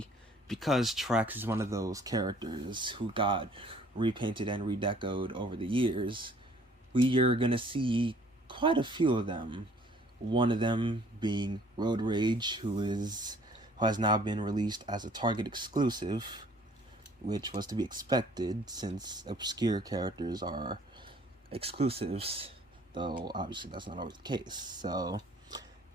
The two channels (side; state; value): both; normal; correlation 0.57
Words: because Trax is one of those characters who got repainted and redecoed over the years, we are going to see quite a few of them. One of them being Road Rage, who has now been released as a Target exclusive, which was to be expected since obscure characters are exclusives, though obviously that's not always the case. So